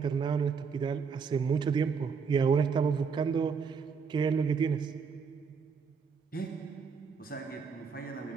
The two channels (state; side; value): quieter; left; 5.8 dB